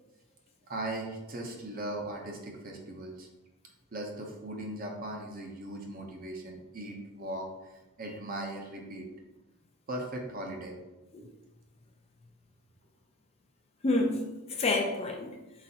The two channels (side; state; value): both; normal; correlation 0.33